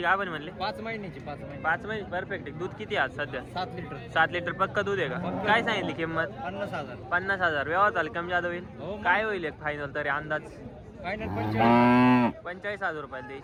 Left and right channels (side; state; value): both; identical; correlation 1.00